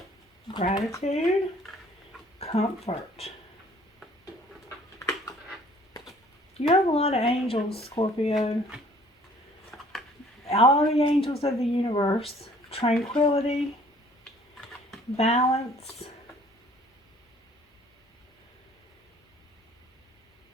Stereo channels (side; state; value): both; normal; correlation 0.56